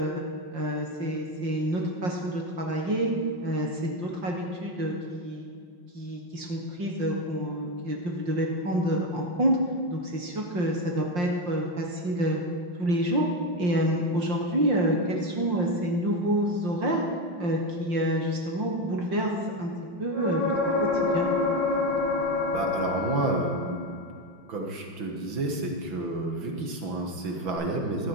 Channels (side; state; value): left; late; 6.1 ms